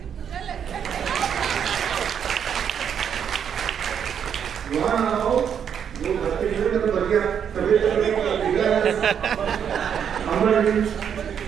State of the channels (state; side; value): quieter; left; 8.1 dB